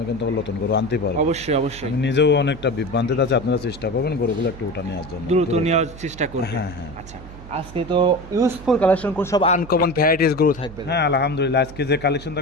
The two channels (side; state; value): right; noise; hum, 16 dB below the sound